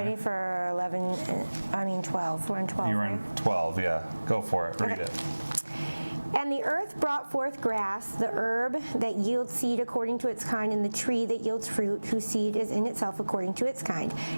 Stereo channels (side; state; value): both; inverted; correlation -1.00